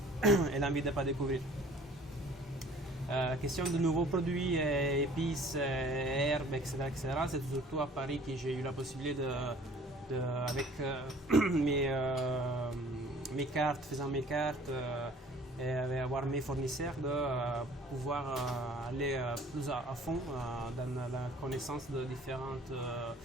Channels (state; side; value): normal; both; correlation 0.52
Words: et l'envie de ne pas découvrir. Question de nouveaux produits, épices, herbes, etc. C'est surtout à Paris que j'ai eu la possibilité avec mes cartes, faisant mes cartes et avoir mes fournisseurs, de pouvoir aller plus à fond dans la connaissance de différents